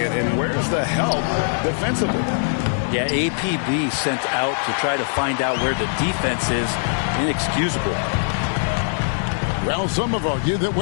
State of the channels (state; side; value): silent; right; 59 dB below the other